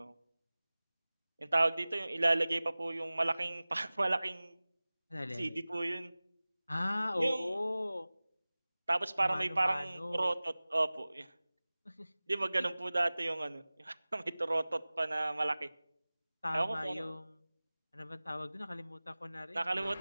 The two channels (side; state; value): both; inverted; correlation -0.98